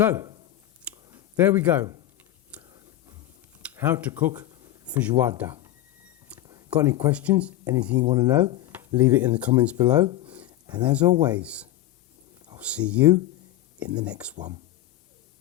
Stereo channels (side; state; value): right; quieter; 14.0 dB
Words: there we go. How to cook feijoada. Got any questions? Anything you want to know? Leave it in the comments below. And as always, I'll see you in the next one.